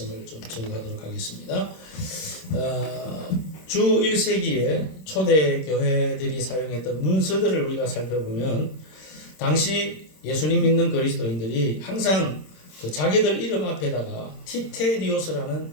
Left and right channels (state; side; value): late; right; 26 ms